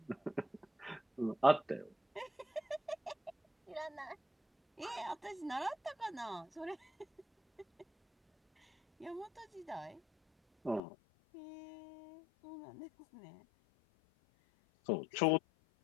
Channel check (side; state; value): right; drops out; at 10.8 s